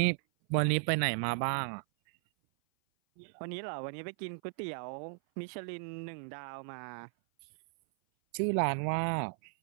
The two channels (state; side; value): silent; left; 54 dB below the other